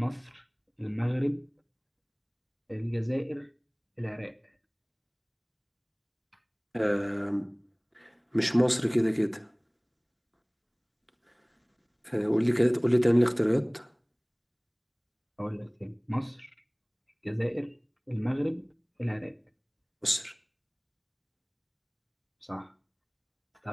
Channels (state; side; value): identical; both; correlation 1.00